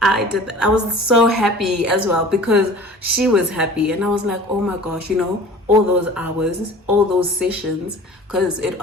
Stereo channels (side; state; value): both; normal; correlation 0.43